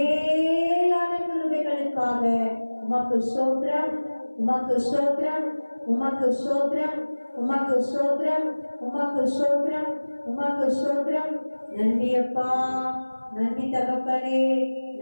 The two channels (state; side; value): inverted; both; correlation -1.00